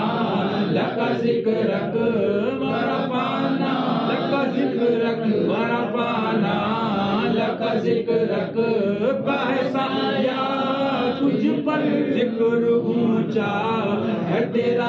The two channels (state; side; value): identical; both; correlation 1.00